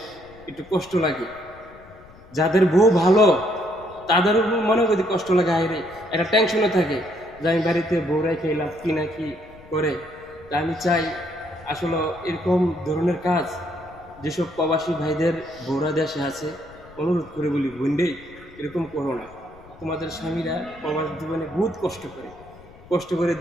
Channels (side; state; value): left; noise; rumble, 23 dB below the sound